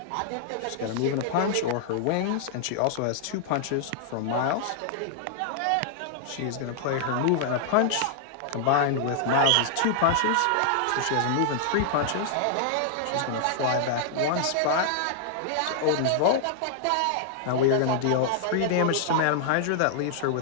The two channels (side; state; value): both; different; correlation -0.01